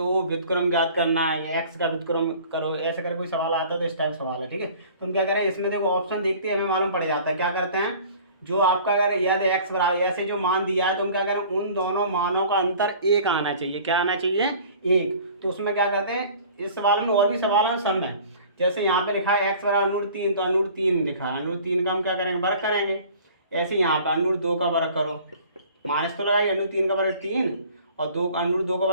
व्युत्क्रम ज्ञात करना है, एक्स का व्युत्क्रम करो, ऐसे कर कोई सवाल आता है तो इस टाइप सवाल है, ठीक है। तो हम क्या करें, इसमें देखो ऑप्शन देखते हैं, हमें मालूम पड़ जाता है। क्या करते हैं, जो आपका अगर याद एक्स बराबर ऐसे जो मान दिया है तो हम क्या करें, उन दोनों मानों का अंतर एक आना चाहिए। क्या आना चाहिए, एक। तो उसमें क्या करते हैं, इस सवाल में और भी सवाल हैं सब में। जैसे यहाँ पे लिखा है एक्स बराबर √3 तो √3 लिखा है, √3 का हम क्या करेंगे, वर्ग करेंगे। ऐसे यहाँ पे √2 का वर्ग करो, माइनस तो लगाइए, √3 का वर्ग 3 और √2 का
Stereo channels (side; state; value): both; inverted; correlation -0.48